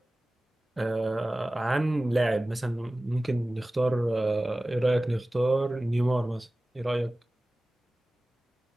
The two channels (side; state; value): both; normal; correlation 0.97